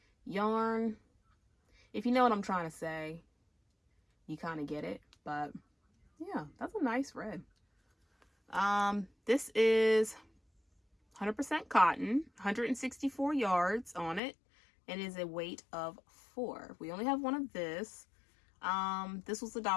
yarn. If you know what I'm trying to say, you kind of get it. But yeah, that's a nice red. This is 100% cotton, 164 yards on it, and is a weight of 4. We only have one of this. This was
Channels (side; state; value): right; drops out; at 14.2 s